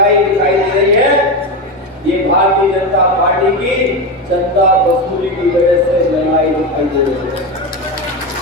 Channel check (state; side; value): normal; both; correlation 0.16